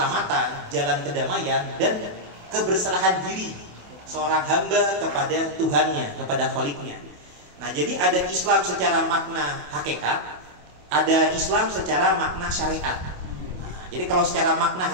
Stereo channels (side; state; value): left; late; 28 ms